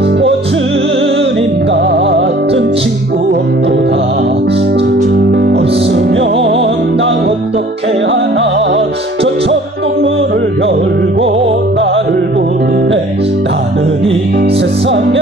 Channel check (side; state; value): both; normal; correlation 0.51